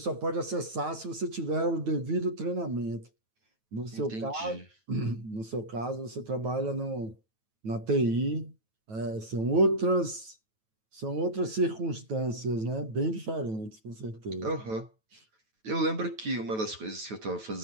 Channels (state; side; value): late; left; 9.2 ms